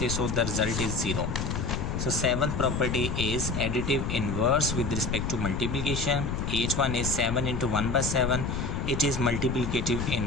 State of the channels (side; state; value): left; noise; rumble, 2 dB below the sound